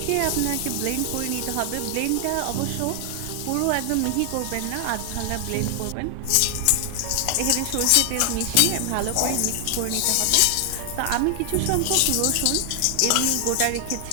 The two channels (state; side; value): different; both; correlation 0.00